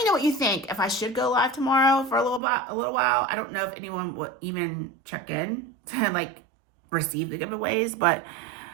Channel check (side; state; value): left; drops out; at 2.4 s